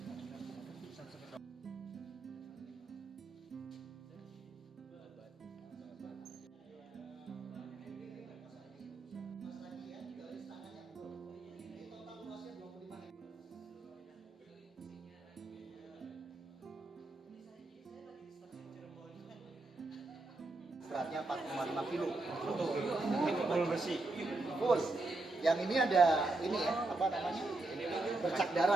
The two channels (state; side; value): quieter; left; 3.1 dB